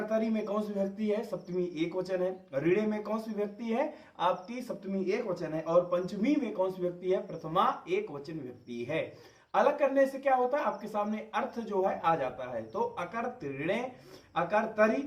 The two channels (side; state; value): both; identical; correlation 1.00